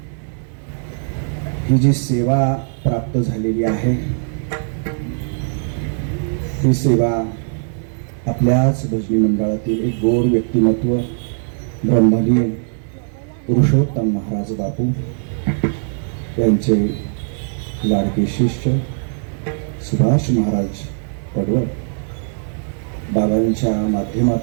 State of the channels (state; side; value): silent; left; digital silence